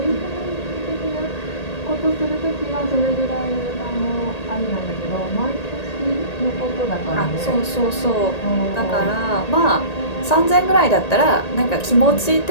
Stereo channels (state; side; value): late; right; 1.8 ms